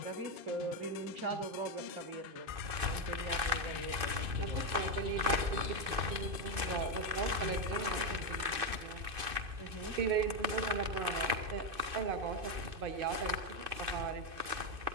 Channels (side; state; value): left; late; 2.5 ms